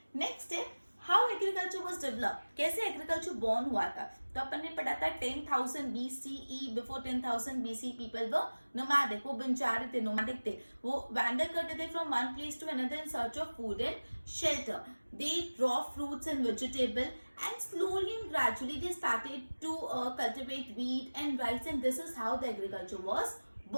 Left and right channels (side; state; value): both; inverted; correlation -1.00